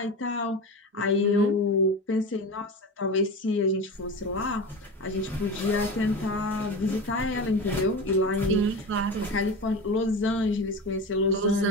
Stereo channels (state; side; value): normal; both; correlation 0.27